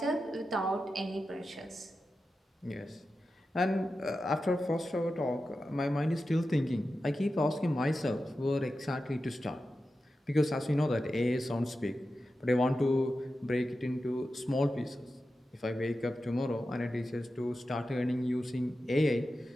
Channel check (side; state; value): both; normal; correlation 0.92